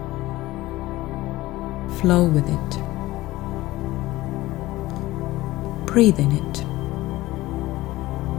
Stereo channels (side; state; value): right; quieter; 17.8 dB